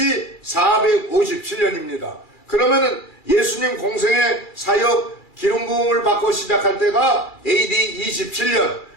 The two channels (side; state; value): right; late; 2.3 ms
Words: 457년입니다. 그러면은 예수님 공생의 사역 기름 부음을 받고 시작할 때가 AD 27년,